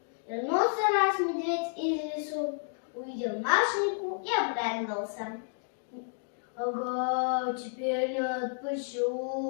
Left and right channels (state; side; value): silent; right; digital silence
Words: Вернулся раз медведь из лесу, увидел Машеньку и обрадовался. Ага, теперь не